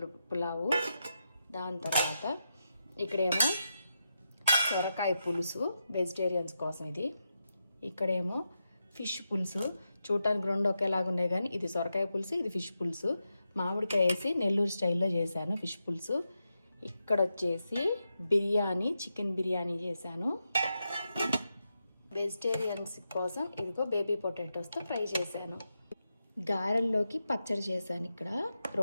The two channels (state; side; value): inverted; both; correlation -0.87